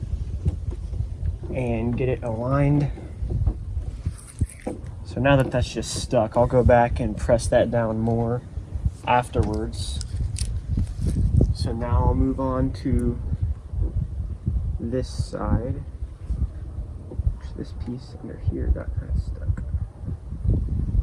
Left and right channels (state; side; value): identical; both; correlation 1.00